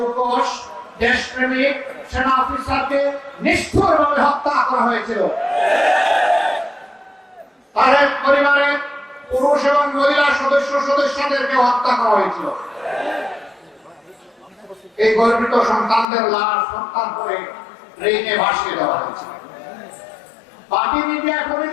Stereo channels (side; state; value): right; drops out; at 16.1 s